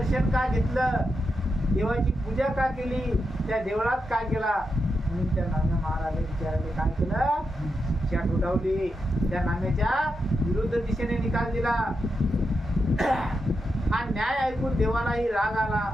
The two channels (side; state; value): both; normal; correlation 0.86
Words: का घेतलं? देवाची पूजा का केली? त्या देवळात काय केला? म्हणून त्या नाम्या महाराजांनी विचाराने काय केलं? शिक्षा ठोठावली. त्या नाम्याच्या विरुद्ध दिशेने निकाल दिला. हा न्याय ऐकून देवालाही राग आला